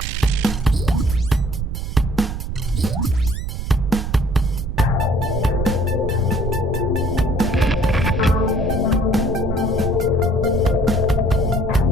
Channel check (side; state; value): right; noise; rumble, 4 dB below the sound